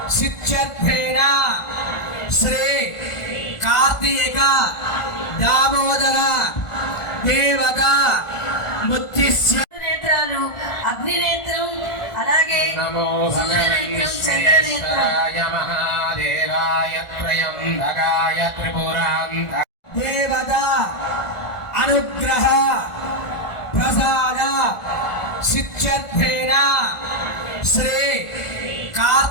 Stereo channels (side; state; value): right; late; 1.4 ms